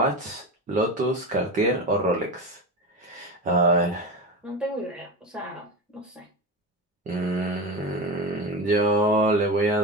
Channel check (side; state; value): both; normal; correlation 0.23